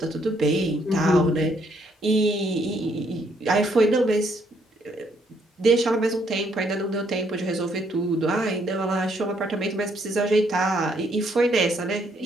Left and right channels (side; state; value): both; normal; correlation 0.70